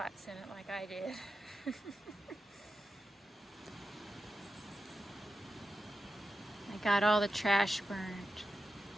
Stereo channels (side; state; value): both; normal; correlation 0.91